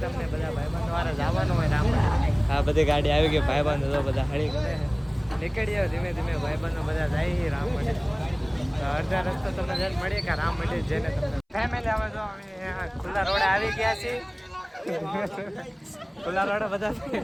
તમને બધા ભાઈબંધો વારે જવાનું હોય રામ. આ બધી ગાડી આવી ગઈ. ભાઈબંધો તો બધા હળી કરે નીકળી આવે ધીમે ધીમે. ભાઈબંધો બધા જાય રામ માટે. અડધા રસ્તો તમને જઈને મળીએ કે રામ માટે જઈને તમને ફેમિલી આવે. તો અમે ખુલ્લા રોડે આવી ગયા છીએ. ખુલ્લા રોડે બધા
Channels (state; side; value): identical; both; correlation 1.00